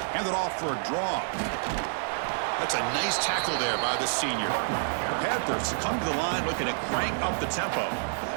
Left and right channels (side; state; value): left; silent; digital silence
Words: Hand it off for a draw. That's a nice tackle there by the senior. The Panthers come to the line looking to crank up the tempo.